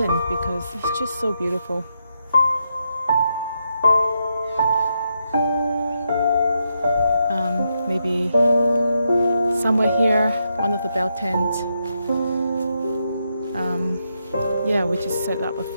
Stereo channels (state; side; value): inverted; both; correlation -0.82